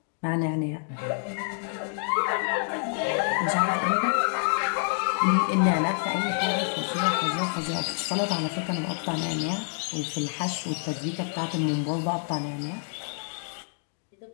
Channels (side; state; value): right; silent; 58 dB below the other